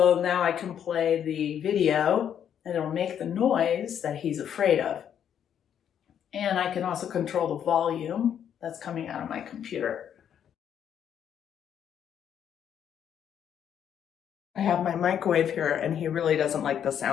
now I can play the video and it'll make the noise that he's afraid of. And I can also control the volume that's coming out of my computer. I have my microwave here and he really doesn't like the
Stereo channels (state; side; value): quieter; right; 9.0 dB